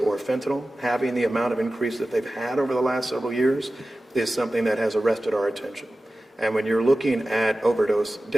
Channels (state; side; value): normal; both; correlation 0.95